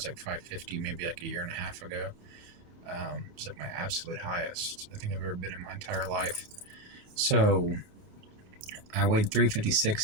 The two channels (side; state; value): left; late; 28 ms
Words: like 550 maybe like a year and a half ago. It was like my absolute highest I think I've ever been in my entire life. So I weighed